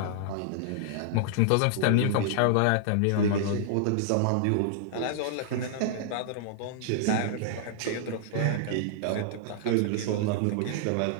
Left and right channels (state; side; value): different; both; correlation -0.01